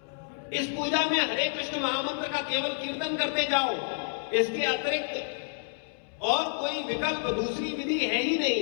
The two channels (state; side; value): silent; right; 58 dB below the other